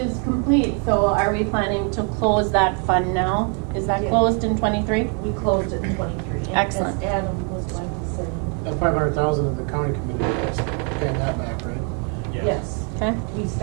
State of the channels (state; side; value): quieter; left; 39.4 dB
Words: complete. So are we planning to close that fund now? Is that closed in 23? We closed it in 23. Excellent. As Adam was going to say. That 500,000 of the county committee is paying that back, right? Yes. Okay. We